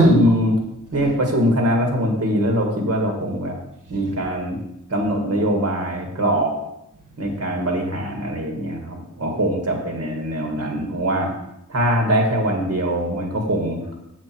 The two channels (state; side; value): normal; both; correlation 0.32